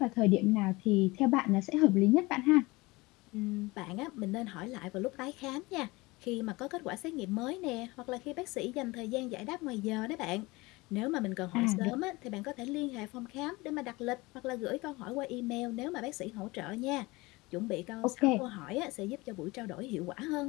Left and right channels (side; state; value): right; quieter; 22.6 dB